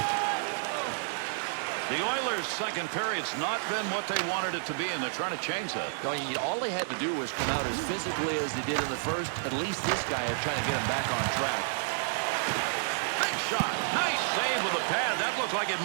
The Oilers' second period's not been what they wanted it to be, and they're trying to change that. No, all they had to do was come out as physically as they did in the first. At least this guy is trying to get him back on track. Big shot. Nice save with a pad. That looked like it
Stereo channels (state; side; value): silent; left; digital silence